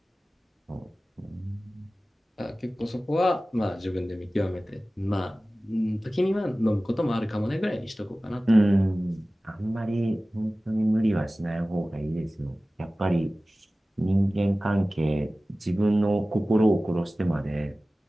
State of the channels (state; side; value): normal; both; correlation 0.97